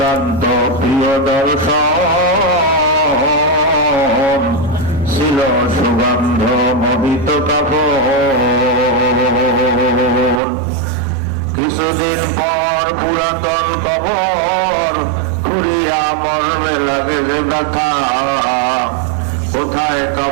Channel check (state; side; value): drops out; left; at 10.4 s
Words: প্রিয় দর্শন ছিল সুগন্ধ মোহিত কাপড়। কিছুদিন পর পুরাতন কবর ফুরিয়া মর্মে লাগে যে ব্যথা, কোথায়